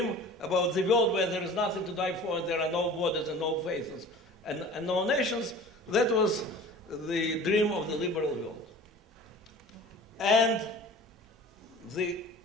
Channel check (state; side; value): normal; both; correlation 0.42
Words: about the world where there is nothing to die for, and there are no borders and no faces and no nations. That was the dream of the liberal world. And the